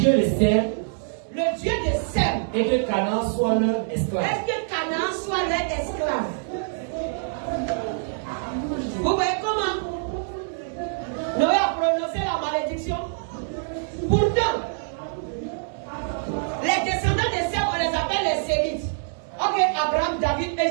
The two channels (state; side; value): silent; left; digital silence